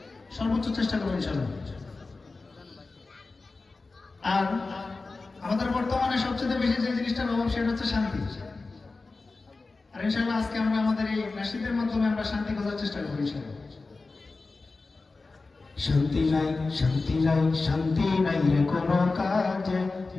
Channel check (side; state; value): right; quieter; 3.7 dB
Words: সর্বোচ্চ চেষ্টা করবো ইনশাআল্লাহ। আর আমাদের বর্তমানে সবচেয়ে বেশি যে জিনিসটার অভাব সেটা হচ্ছে শান্তি। আর ইনশাআল্লাহ আজকে আমরা আমাদের এই নাশিদের মাধ্যমে আমরা শান্তি খোঁজার চেষ্টা করবো ইনশাআল্লাহ। শান্তি নাই, শান্তি নাই, শান্তি নাই রে কোনো কাজে,